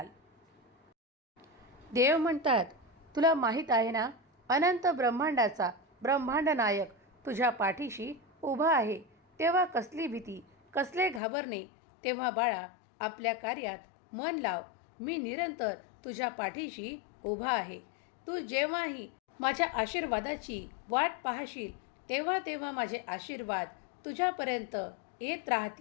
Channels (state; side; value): drops out; right; at 11.2 s